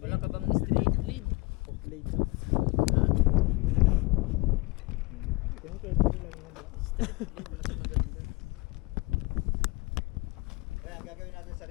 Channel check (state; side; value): quieter; right; 24.8 dB